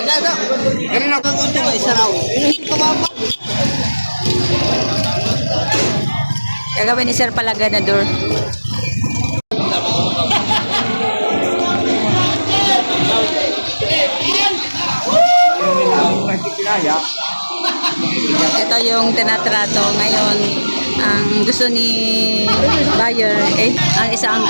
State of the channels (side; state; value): both; inverted; correlation -1.00